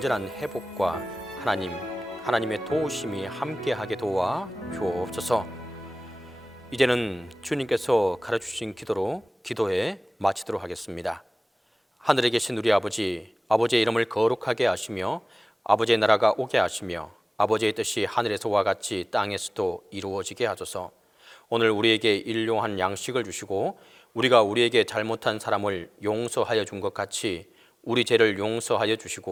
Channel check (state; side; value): normal; both; correlation 0.98